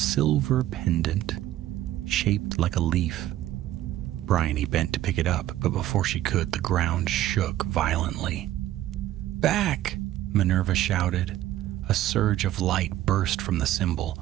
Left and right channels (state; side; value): quieter; left; 13.7 dB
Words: pendant shaped like a leaf. Bryony bent to pick it up, but before she could, the ground shook violently. "Back!" Minerva shouted. A surge of light burst from the symbol,